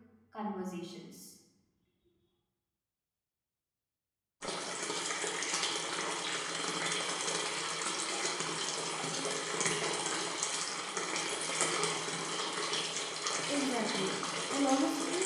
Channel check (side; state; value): both; identical; correlation 1.00